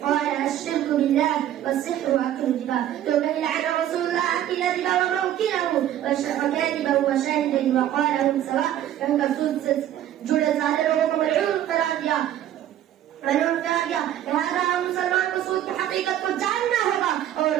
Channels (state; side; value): quieter; left; 11.7 dB